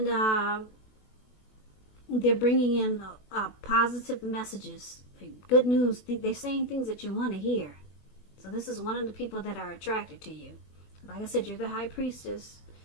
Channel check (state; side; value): late; right; 20 ms